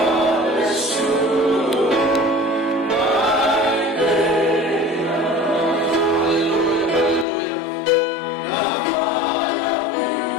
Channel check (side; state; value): right; drops out; at 7.2 s